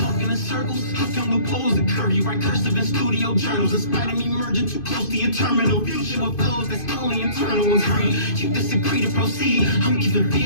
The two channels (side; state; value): right; late; 2.5 ms